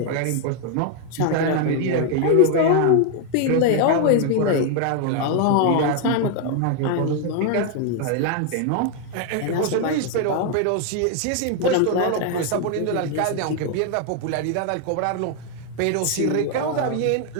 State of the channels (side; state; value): both; different; correlation 0.00